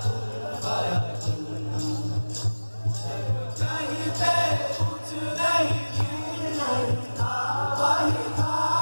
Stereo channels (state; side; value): inverted; both; correlation -1.00